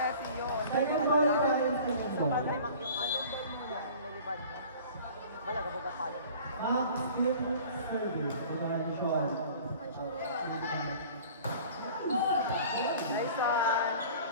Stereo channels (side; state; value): both; inverted; correlation -0.45